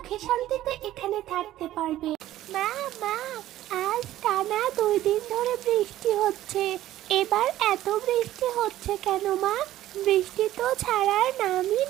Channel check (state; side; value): quieter; left; 14.0 dB